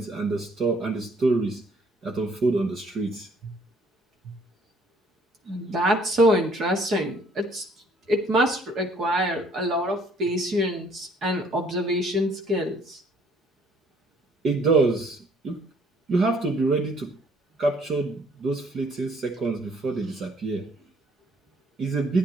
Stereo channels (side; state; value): both; normal; correlation 0.61